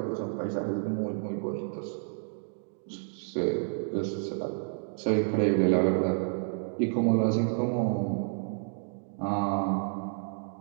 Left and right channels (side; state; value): left; silent; digital silence